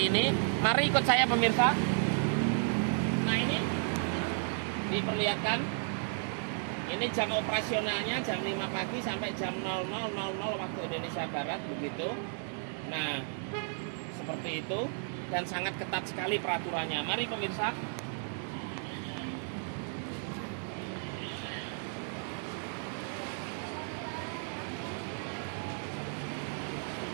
ini. Mari ikut saya pemirsa. Nah, ini diperlihatkan. Ini jam operasionalnya jam 5 pagi sampai jam 00.00 waktu Indonesia Barat begitu. Nah, seperti itu, dan sangat ketat sekali peraturannya. Mari pemirsa.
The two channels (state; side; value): silent; left; 55 dB below the other